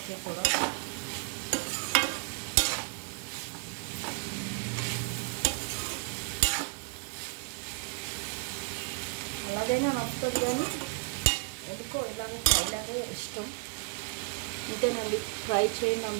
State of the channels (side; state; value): left; quieter; 36.0 dB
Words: కూడా అలాగైనా నచ్చుతుంది, కానీ ఎందుకో ఇలాగే ఫ్రైలాగే ఇష్టం. ఇంతేనండి, ఫ్రై చేయండి